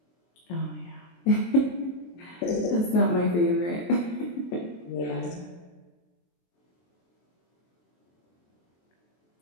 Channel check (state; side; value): late; right; 23 ms